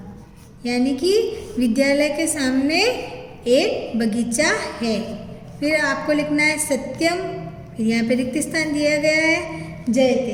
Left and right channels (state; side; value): identical; both; correlation 1.00